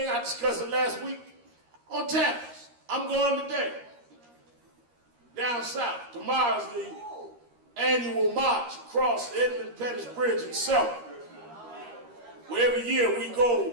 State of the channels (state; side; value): late; left; 13 ms